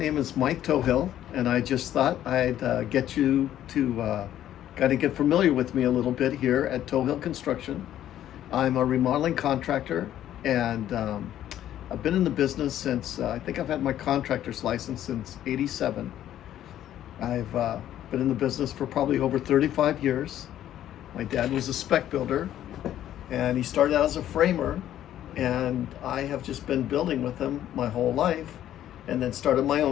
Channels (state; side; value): quieter; right; 11.8 dB